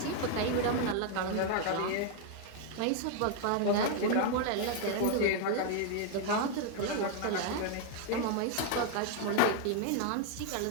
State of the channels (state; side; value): different; both; correlation 0.00